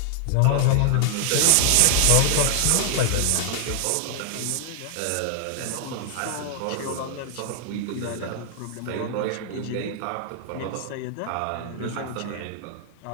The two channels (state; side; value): different; both; correlation 0.00